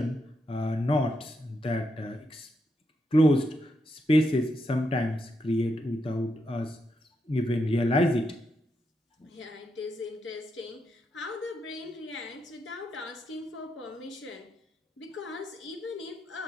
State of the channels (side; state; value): both; normal; correlation 0.82